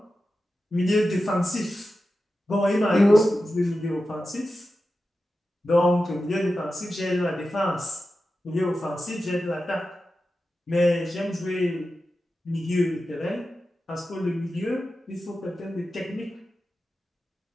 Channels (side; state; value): both; normal; correlation 0.92